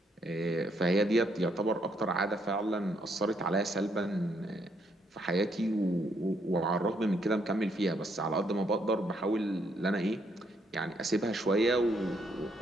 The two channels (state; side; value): normal; both; correlation 0.73